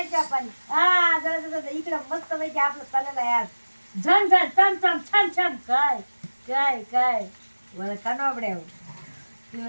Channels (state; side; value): inverted; both; correlation -1.00